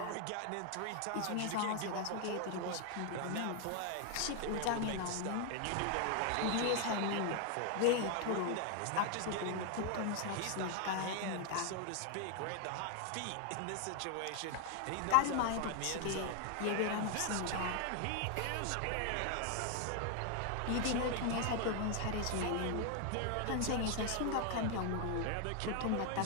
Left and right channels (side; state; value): both; different; correlation 0.00